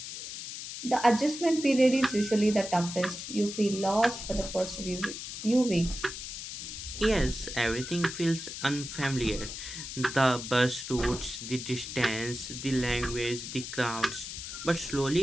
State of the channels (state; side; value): noise; left; hiss, 8 dB below the sound